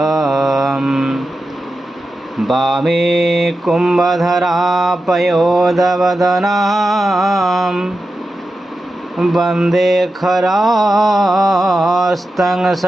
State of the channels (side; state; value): both; normal; correlation 0.91